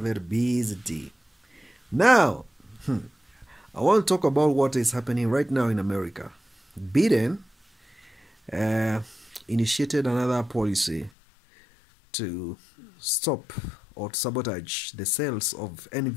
busy day. Now, I want to talk about what is happening right now in America. Biden uh, initiated another policy to stop or sabotage the sales of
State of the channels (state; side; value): drops out; right; at 11.1 s